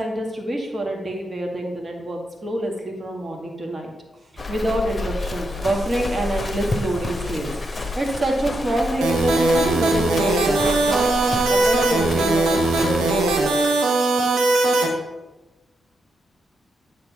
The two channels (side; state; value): both; normal; correlation 0.82